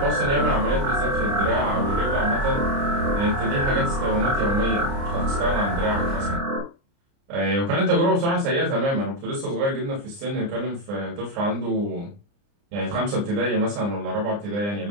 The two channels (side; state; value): left; late; 29 ms